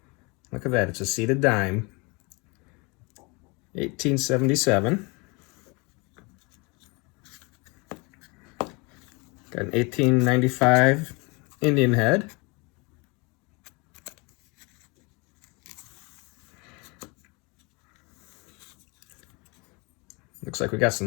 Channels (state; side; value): quieter; right; 28.5 dB